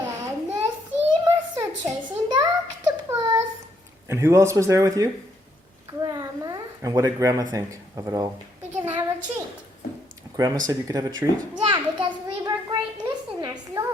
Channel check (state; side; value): normal; both; correlation 0.73